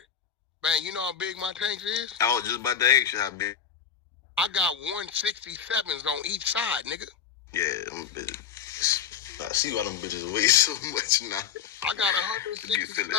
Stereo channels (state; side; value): quieter; right; 8.3 dB